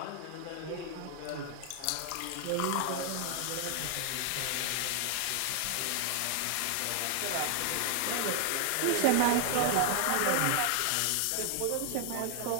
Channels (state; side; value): different; both; correlation 0.00